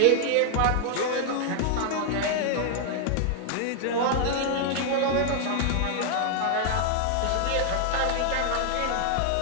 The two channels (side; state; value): both; different; correlation 0.00